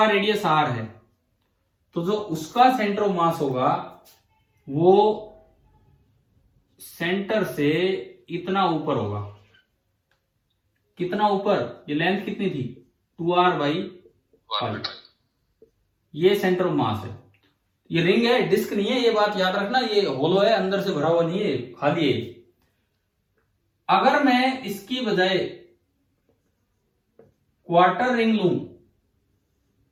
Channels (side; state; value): both; identical; correlation 1.00